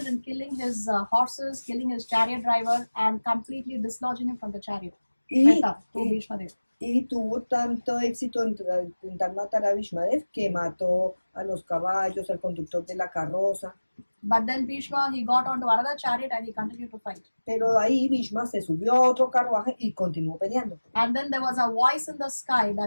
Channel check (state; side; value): inverted; both; correlation -1.00